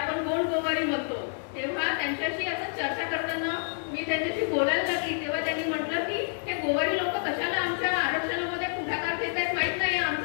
गोंड गोवारी म्हणतो. तेव्हा त्यांच्याशी असं चर्चा करताना मी त्यांच्याशी बोलायला लागली तेव्हा त्यांनी म्हटलं की हे गोवारी लोक कशाला आमच्या आरक्षणामध्ये पुढाकार घेत आहेत माहित नाही,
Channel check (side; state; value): right; silent; digital silence